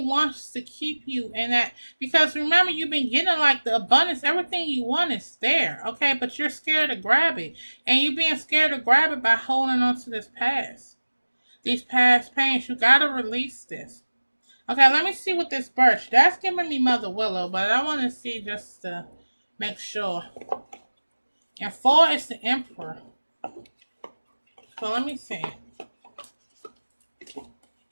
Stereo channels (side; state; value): both; inverted; correlation -1.00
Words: to keep you in that. Because remember, you've been getting like the abundance. Everything you want is there, okay? But you're scared to grab it. And you're being scared to grab it by holding on to this past. These past pains. You got to release this. Okay, let me see what this birch. That's giving me Mother Willow, but I want to see just to make sure. And 4 is the Emperor. So let me see.